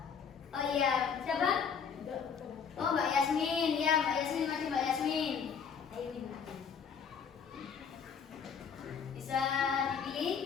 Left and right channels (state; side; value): quieter; right; 6.7 dB